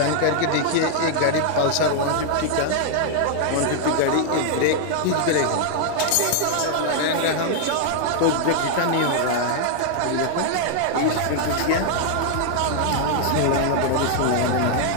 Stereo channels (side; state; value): both; different; correlation 0.00